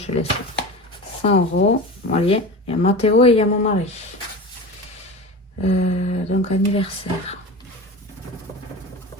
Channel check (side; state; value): both; normal; correlation 0.30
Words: laisse 100 €. Voyez, il y a Mathéo et il y a mon mari. Donc, anniversaire.